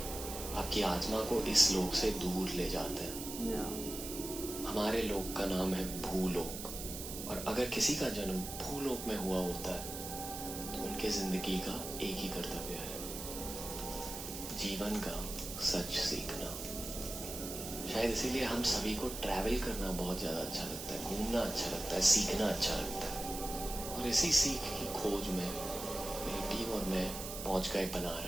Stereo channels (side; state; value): right; noise; hiss, 8 dB below the sound